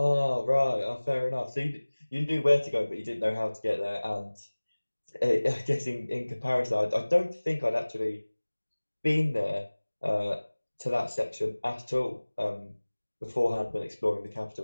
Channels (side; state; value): both; inverted; correlation -1.00